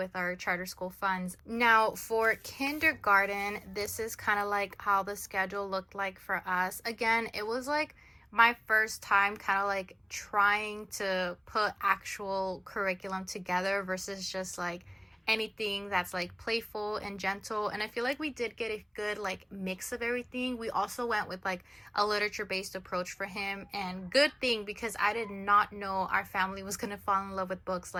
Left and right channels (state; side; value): identical; both; correlation 1.00